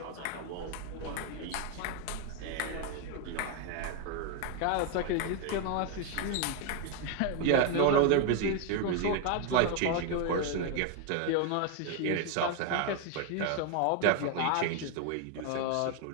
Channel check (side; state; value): both; different; correlation 0.01